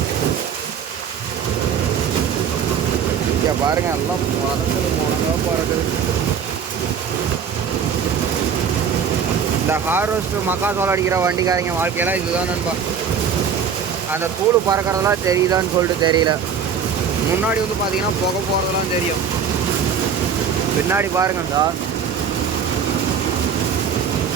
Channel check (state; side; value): quieter; left; 7.1 dB